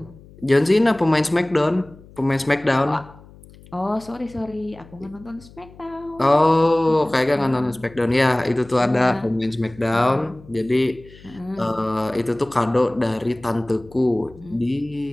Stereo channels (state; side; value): noise; left; hum, 22 dB below the sound